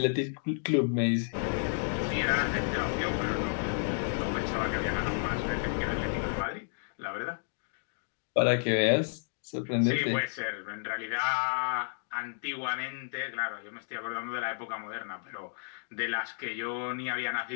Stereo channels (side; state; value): right; silent; digital silence